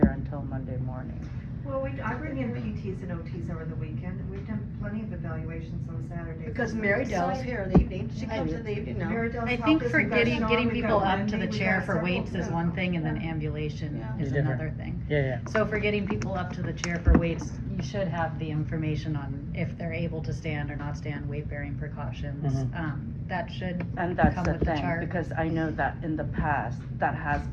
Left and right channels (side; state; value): both; identical; correlation 1.00